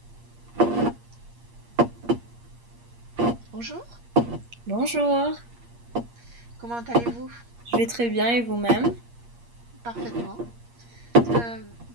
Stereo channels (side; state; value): left; late; 8.5 ms